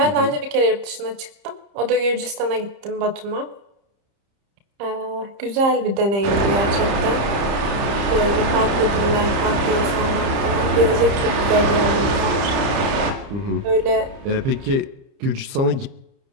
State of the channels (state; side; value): late; left; 30 ms